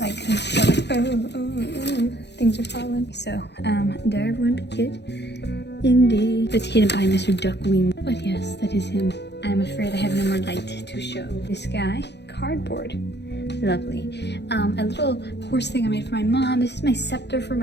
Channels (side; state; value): right; late; 0.50 ms